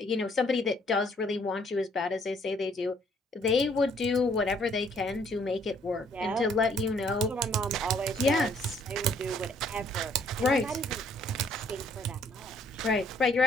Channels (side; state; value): both; normal; correlation 0.64